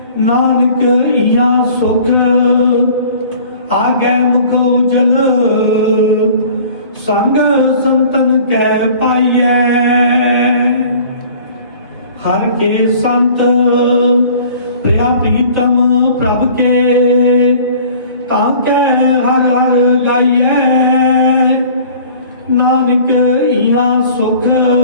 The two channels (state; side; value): inverted; both; correlation -0.49